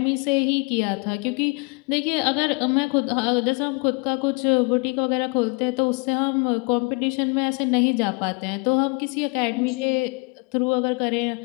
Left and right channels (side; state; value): right; quieter; 31.6 dB